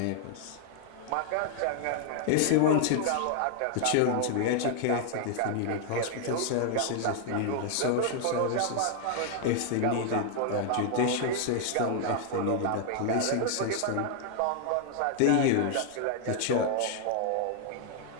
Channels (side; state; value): both; different; correlation 0.00